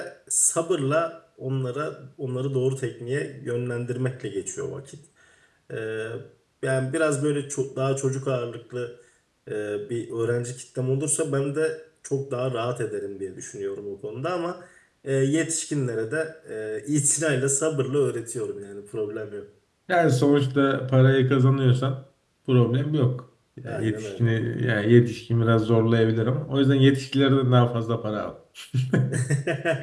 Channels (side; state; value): both; identical; correlation 1.00